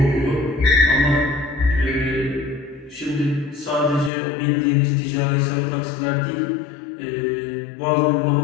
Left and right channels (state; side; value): drops out; right; at 4.1 s